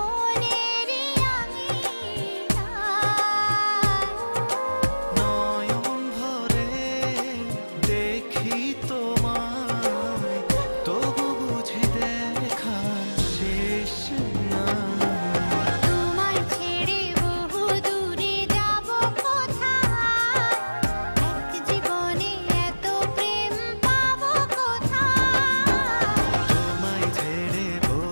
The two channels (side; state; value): both; inverted; correlation -1.00